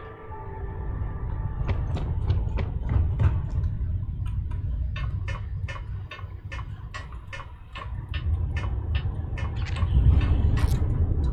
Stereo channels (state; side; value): identical; both; correlation 1.00